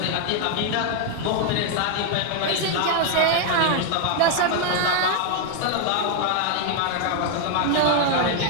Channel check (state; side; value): different; both; correlation 0.00